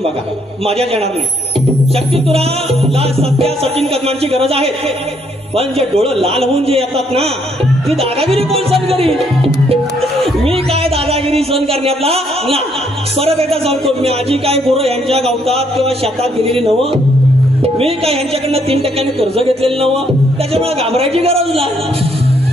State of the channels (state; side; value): normal; both; correlation 0.70